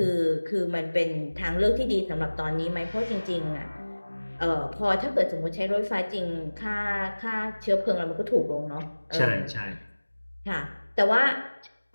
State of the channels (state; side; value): inverted; both; correlation -1.00